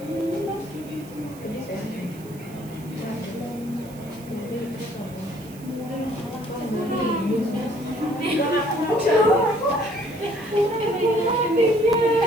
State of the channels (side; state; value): right; noise; hiss, 21 dB below the sound